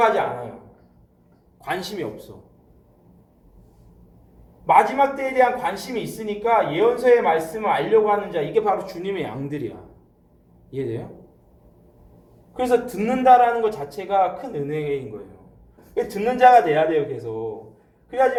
하지 않아요. 관심이 없어. 마지막 때에 대한 관심이 있으니까 예언서의 말씀을 알려고 하는 자, 이게 바로 주님의 양들이야. 이해돼요? 그래서 듣는다라는 것 자체가 큰 은혜인 거예요. 듣는 자가 돼야 돼요, 계속.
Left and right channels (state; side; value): identical; both; correlation 1.00